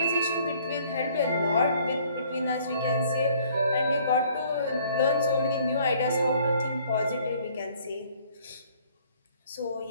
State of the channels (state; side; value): inverted; both; correlation -0.59